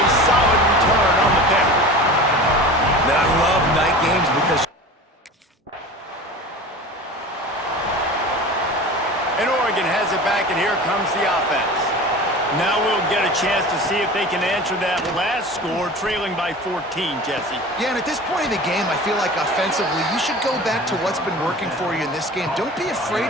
solid return on the pick. Now, I love night games because... And Oregon has it back, and here comes the offense. Now we'll get a chance to see if they can answer that last score, trailing by 14, Jesse. Yeah, and at this point in the game, I feel like offensively, you should go back to what's been working for you in this game. Don't be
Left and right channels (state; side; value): normal; both; correlation 0.36